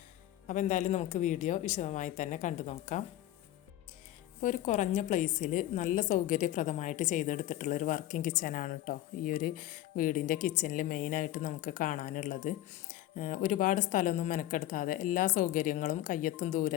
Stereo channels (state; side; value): quieter; right; 14.1 dB